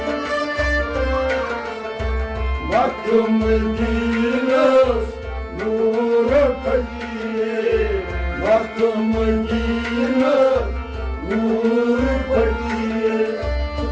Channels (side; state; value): both; identical; correlation 1.00